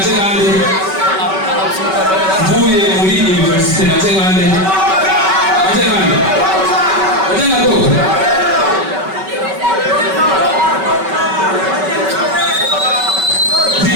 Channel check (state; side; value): late; left; 5.3 ms